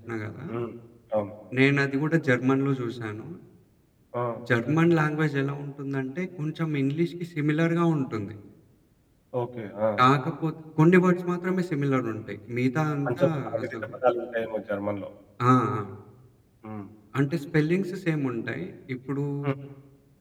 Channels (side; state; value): both; identical; correlation 1.00